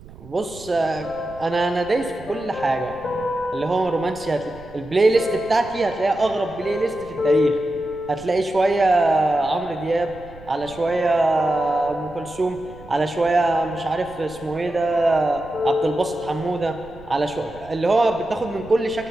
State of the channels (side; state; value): right; noise; rumble, 20 dB below the sound